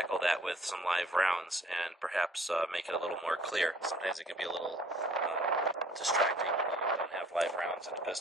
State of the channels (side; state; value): both; normal; correlation 0.57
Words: that with some live rounds and perhaps make it a little more clear. Sometimes it can be a little distracting when you don't have live rounds in a